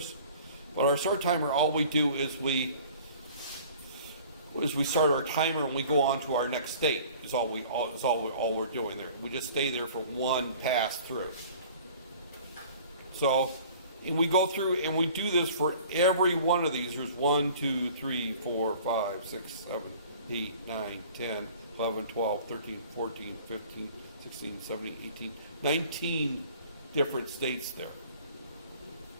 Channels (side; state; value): both; inverted; correlation -0.48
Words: But our start timer, all we do is we start our timer and we go on to our next state. Is all we're doing there. We just stay there for one pass through. So, and we go through and we do this for every one of these. There's 1, 2, 3, 4, 5, 6, 7, 8, 9, 10, 11, 12, 13, 14, 15, 16, 17, 18, 19 different states there.